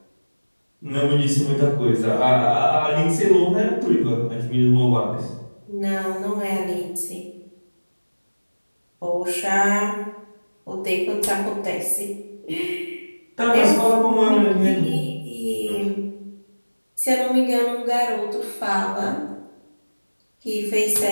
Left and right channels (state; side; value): inverted; both; correlation -1.00